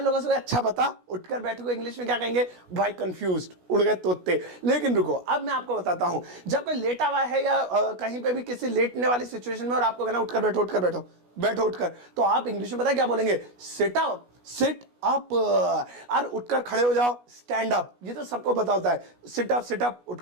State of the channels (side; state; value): left; late; 16 ms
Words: लोगों से अच्छा बता, उठकर बैठो को इंग्लिश में क्या कहेंगे भाई, कंफ्यूज्ड, उड़ गए तोते। लेकिन रुको, अब मैं आपको बताता हूं, जब कोई लेटा हुआ है या कहीं पे भी किसी लेटने वाली सिचुएशन में और आपको कहना उठकर बैठो, उठकर बैठो, बैठो उठकर, तो आप इंग्लिश में पता क्या बोलेंगे, सिट अप, सिट अप। और उठकर खड़े हो जाओ, स्टैंड अप, ये तो सबको पता होता है, सिट अप,